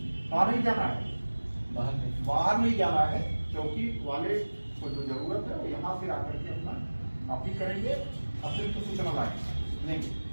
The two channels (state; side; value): inverted; both; correlation -1.00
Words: कहाँ नहीं जाना है, बाहर नहीं जाना है। चौकी वाले को जो जरूरत है वो यहाँ से आकर के अपना कॉपी करेंगे, अतिरिक्त सूचना लाएंगे नहीं,